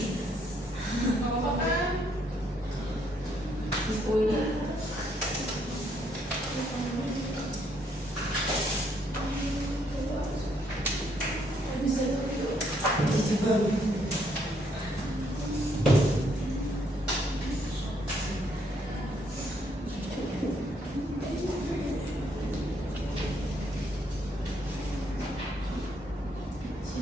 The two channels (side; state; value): both; normal; correlation 0.71